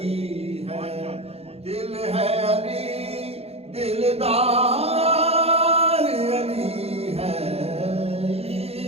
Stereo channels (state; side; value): late; left; 0.29 ms